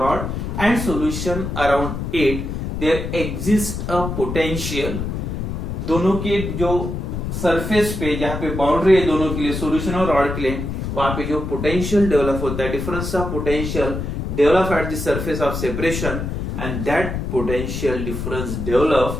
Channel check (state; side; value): noise; left; rumble, 4 dB below the sound